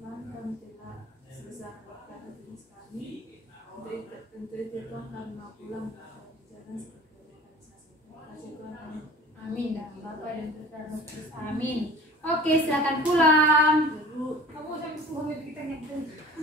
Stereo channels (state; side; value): normal; both; correlation 0.43